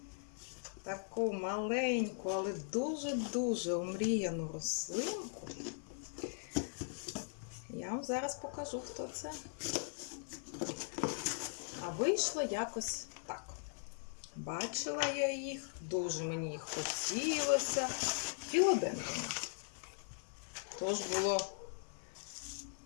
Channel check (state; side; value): silent; right; 51 dB below the other